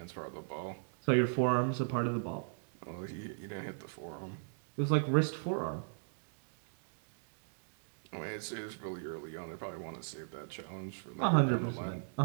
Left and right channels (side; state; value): left; silent; digital silence